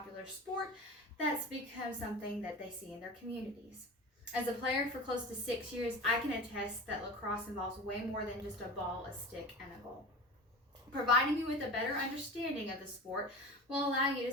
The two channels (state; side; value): normal; both; correlation 0.32